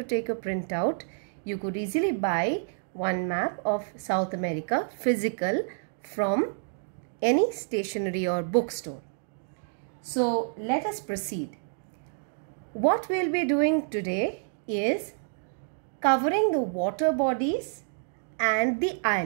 take a printout, you could easily buy one map of South America physical from any stationery or bookstore. So let us proceed. What we'll be doing today is covering the water bodies and the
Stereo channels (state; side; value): silent; left; digital silence